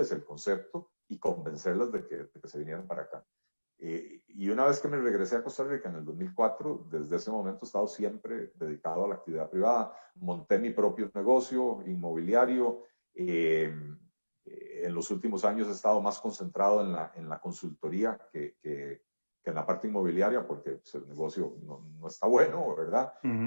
el concepto y convencerlas de que se vinieran para acá. Y una vez que me regresé a Costa Rica en el 2004, desde ese momento he estado siempre dedicado a la actividad privada. Monté mi propio negocio inmobiliario. En los últimos años he estado más concentrado en la consultoría que en la parte inmobiliaria, porque pues, el negocio no está bueno, ¿verdad?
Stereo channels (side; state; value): both; inverted; correlation -1.00